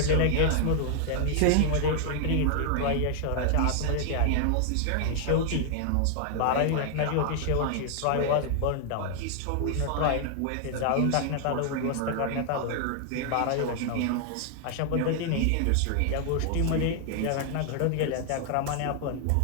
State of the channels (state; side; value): different; both; correlation 0.00